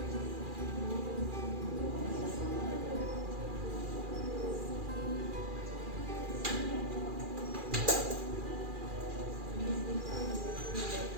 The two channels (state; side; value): late; left; 2.4 ms